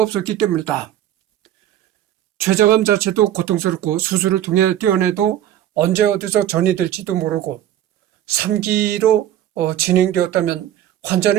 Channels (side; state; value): left; quieter; 11.8 dB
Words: 없었기 때문이다. 췌장암 자체도 고통스럽고 수술을 통해 떼어내도 언제 어디서 전이 될지도 모르고 3기로 진행되었다면